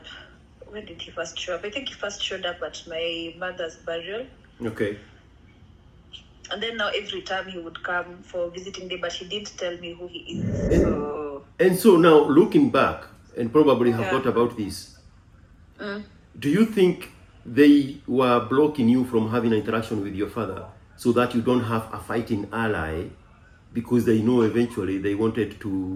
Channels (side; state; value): both; identical; correlation 1.00